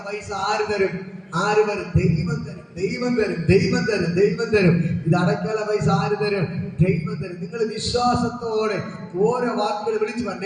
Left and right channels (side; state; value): both; identical; correlation 1.00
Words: പൈസ ആര് തരും? ആര് വരും? ദൈവം തരും, ദൈവം തരും, ദൈവം തരും, ദൈവം തരും. ഇത് അടയ്ക്കാനുള്ള പൈസ ആര് തരും? ദൈവം തരും. നിങ്ങൾ വിശ്വാസത്തോടെ ഓരോ വാക്കുകൾ വിളിച്ചു